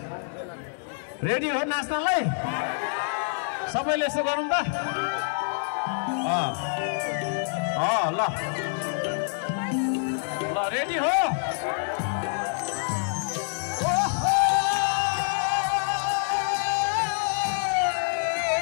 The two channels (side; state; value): right; silent; digital silence